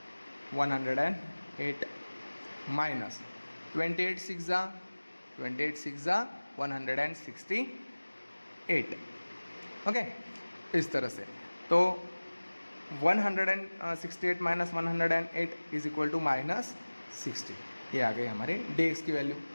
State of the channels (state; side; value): inverted; both; correlation -1.00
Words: 108 माइनस 28 6 ज़ा 168। ओके, इस तरह से। तो 168 माइनस 108 = -60। ये आ गई हमारे dx की वैल्यू।